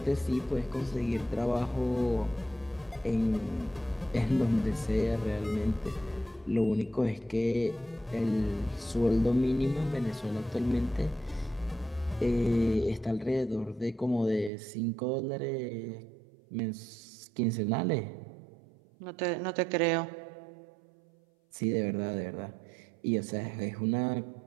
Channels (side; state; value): left; drops out; at 14.5 s